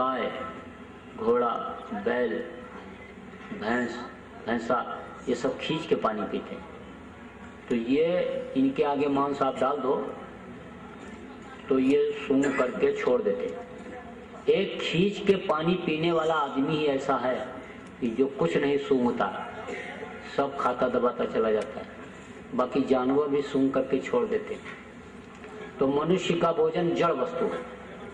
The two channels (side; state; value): both; identical; correlation 1.00